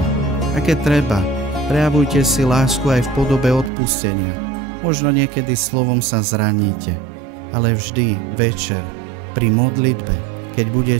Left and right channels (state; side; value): drops out; left; at 3.7 s